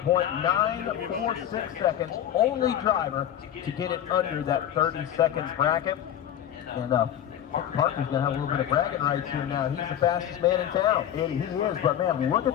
seconds. Only driver to get it under that 30 seconds bracket. And Parker's going to have a little bit of bragging rights here now. He's the fastest man in town. And he is, but man, look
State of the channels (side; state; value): right; quieter; 10.6 dB